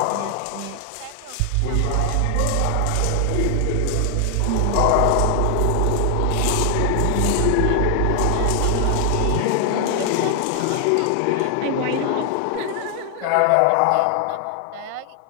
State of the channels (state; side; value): different; both; correlation 0.00